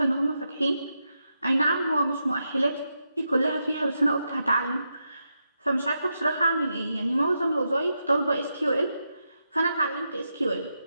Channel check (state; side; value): inverted; both; correlation -0.85